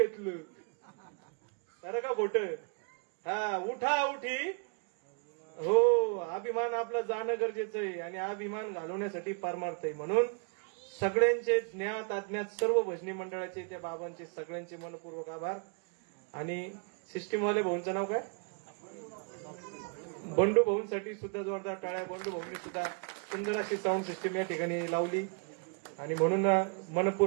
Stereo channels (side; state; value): left; quieter; 38.5 dB